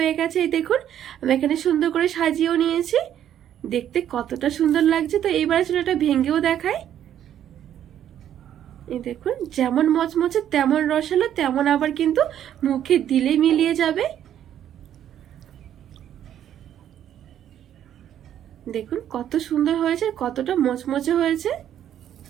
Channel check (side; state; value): left; quieter; 10.5 dB